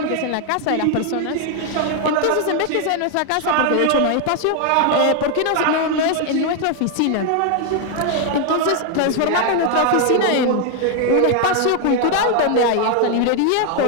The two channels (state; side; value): different; both; correlation 0.00